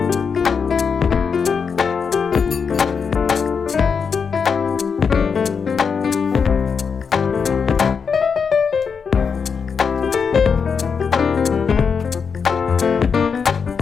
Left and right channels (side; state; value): right; quieter; 6.0 dB